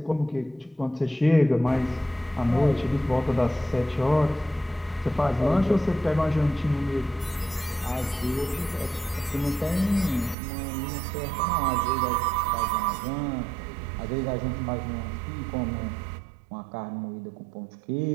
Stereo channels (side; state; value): left; drops out; at 10.4 s